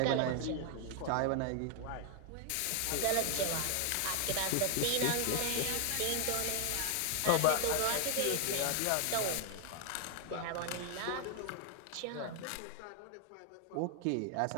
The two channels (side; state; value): both; different; correlation 0.00